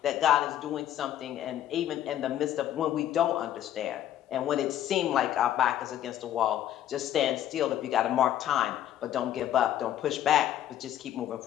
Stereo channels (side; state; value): right; quieter; 11.7 dB